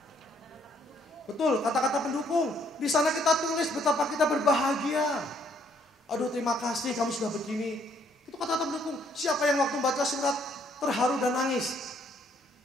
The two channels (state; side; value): normal; both; correlation 0.67